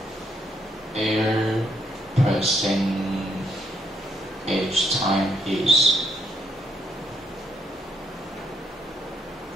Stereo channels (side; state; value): both; normal; correlation 0.73